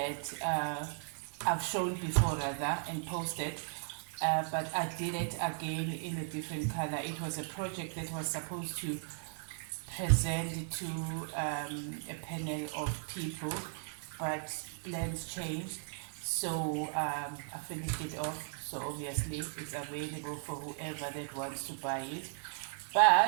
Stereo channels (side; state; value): left; silent; digital silence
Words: I've shown before rather and posted, but I did it again in a different color. It was a project that was supposed to present to a panel of people, but plans changed, so I finished it off. So obviously it's available for whoever that wants to buy it.